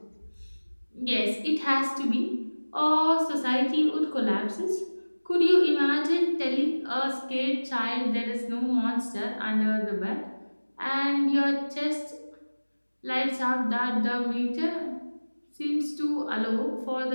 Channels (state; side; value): inverted; both; correlation -1.00